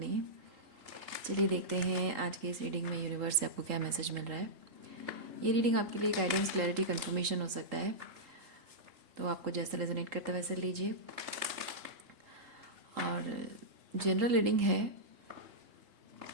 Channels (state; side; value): late; left; 3.8 ms